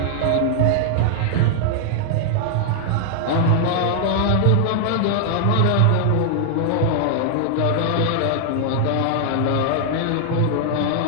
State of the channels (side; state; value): both; different; correlation -0.01